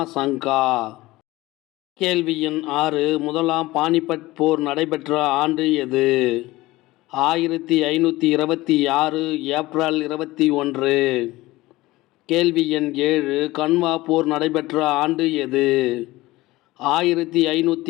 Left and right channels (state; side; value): quieter; right; 18.9 dB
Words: சங்கா. கேள்வி எண் 6. முதலாம் பானிபட் போர் நடைபெற்ற ஆண்டு எது? 1526 ஏப்ரல் 21. கேள்வி எண் 7. கன்வா போர் நடைபெற்ற ஆண்டு எது?